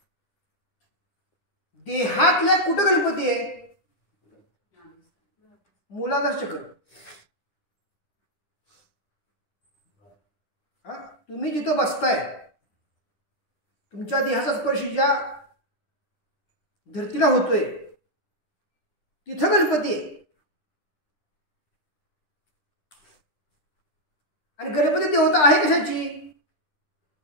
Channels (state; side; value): late; right; 10 ms